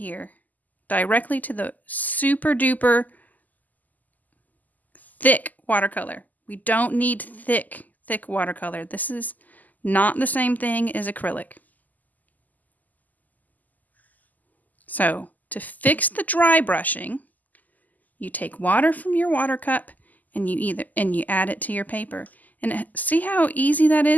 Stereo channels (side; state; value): right; late; 0.081 ms